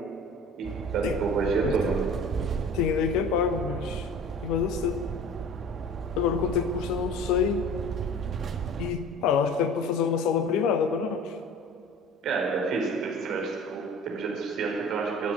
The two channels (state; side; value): normal; both; correlation 0.42